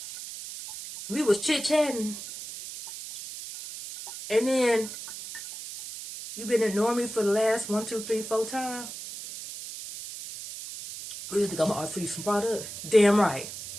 we was chit-chatting, and then you've been ignoring me for the last 1, 2, 3, 4 times. You think I'm gonna offer you some product? Damn right.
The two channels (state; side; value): noise; right; hiss, 10 dB below the sound